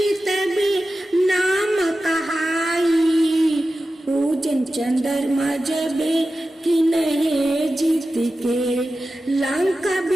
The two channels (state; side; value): normal; both; correlation 0.93